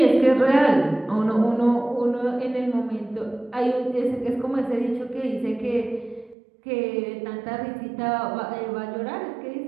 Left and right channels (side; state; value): left; drops out; at 6.4 s